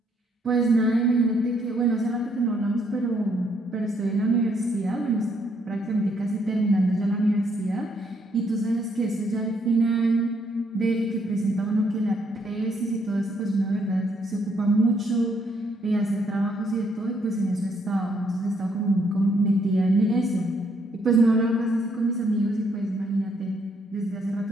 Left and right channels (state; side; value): normal; both; correlation 0.71